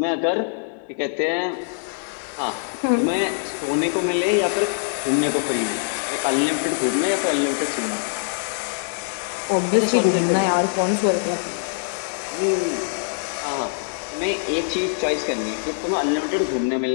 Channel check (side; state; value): right; silent; digital silence